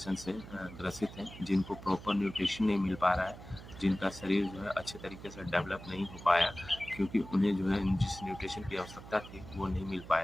से ग्रसित हैं, जिनको प्रॉपर न्यूट्रिशन नहीं मिल पा रहा है, जिनका शरीर जो है अच्छे तरीके से डेवलप नहीं हो पाया, क्योंकि उन्हें जो है जिस न्यूट्रिशन की आवश्यकता थी वो नहीं मिल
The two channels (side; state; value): right; noise; hum, 15 dB below the sound